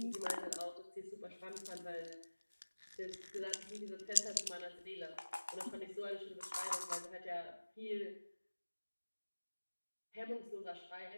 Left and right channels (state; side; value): inverted; both; correlation -1.00